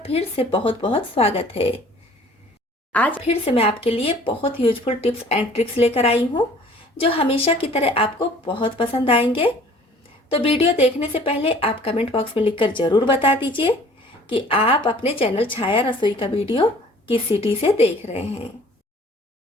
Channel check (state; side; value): normal; both; correlation 0.51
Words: फिर से बहुत बहुत स्वागत है। आज फिर से मैं आपके लिए बहुत यूजफुल टिप्स एंड ट्रिक्स लेकर आई हूँ जो हमेशा की तरह आपको बहुत पसंद आएंगे। तो वीडियो देखने से पहले आप कमेंट बॉक्स में लिखकर ज़रूर बता दीजिए कि आप अपने चैनल छाया रसोई का वीडियो किस सिटी से देख रहे हैं।